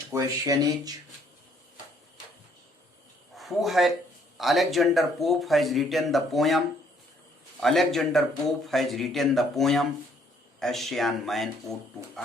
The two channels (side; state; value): both; normal; correlation 0.65